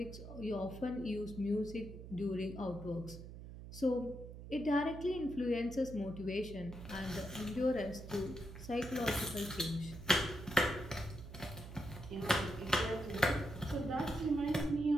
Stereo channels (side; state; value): right; noise; hum, 12 dB below the sound